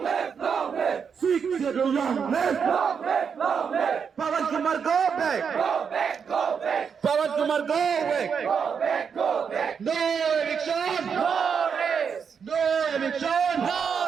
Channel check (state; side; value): quieter; left; 6.6 dB